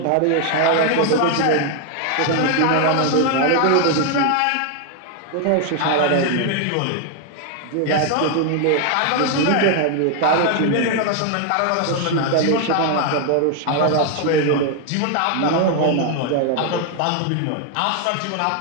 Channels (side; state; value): both; different; correlation 0.00